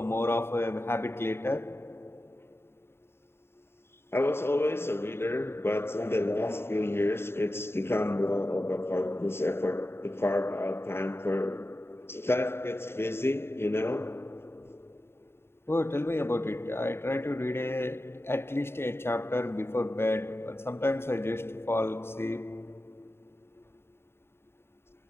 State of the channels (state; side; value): late; right; 0.11 ms